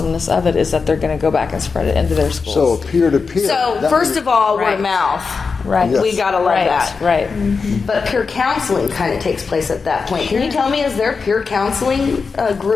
of it, is that they're going to go back and spread it into their schools. So peer-to-peer. So first of all, word Right. of mouth. Right. Yes. We gotta love that. Right. But peer counseling kind of takes place at that point. Can you tell me, is there peer counseling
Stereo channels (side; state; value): right; quieter; 4.9 dB